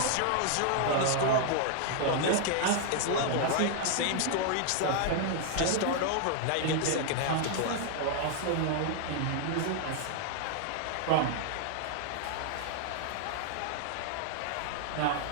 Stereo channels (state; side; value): different; both; correlation 0.00